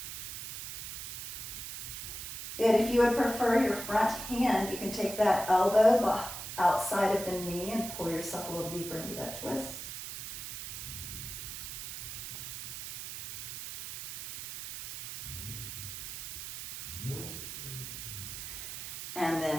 Good. If you would prefer your front hand, you can take that elbow outside of the knee and pull yourself a little deeper into that twist.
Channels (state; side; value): noise; right; hiss, 8 dB below the sound